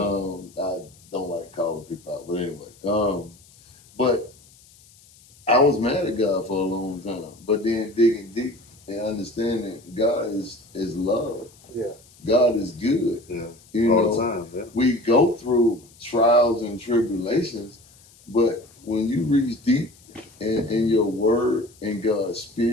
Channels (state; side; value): noise; left; hiss, 27 dB below the sound